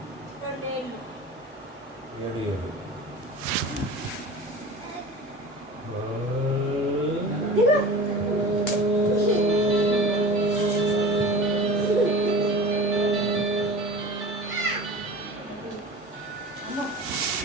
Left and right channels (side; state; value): both; normal; correlation 0.37